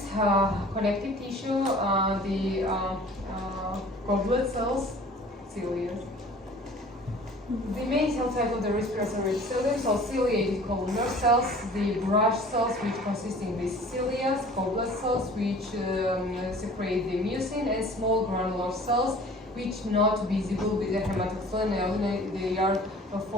connective tissue, the goblet cells, cilia. The main cell type of the respiratory epithelium, so ciliated columnar cells, the brush cells, which consist in these cilia, goblet cells, which secrete the mucin, and small granular cells, which not visible with the hematoxylin. They are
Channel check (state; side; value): normal; both; correlation 0.47